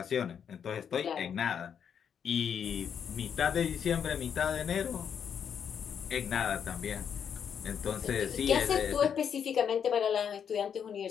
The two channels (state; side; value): quieter; right; 7.8 dB